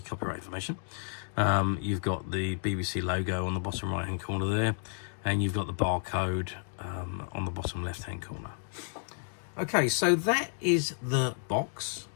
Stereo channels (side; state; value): right; silent; digital silence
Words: copyright information. You've got the BBC logo on the bottom right-hand corner there, and you've got the barcode on the bottom left-hand corner. Okay, so that is the box.